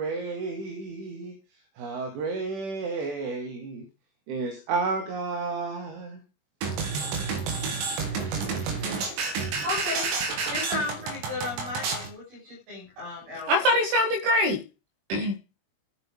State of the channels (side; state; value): left; late; 21 ms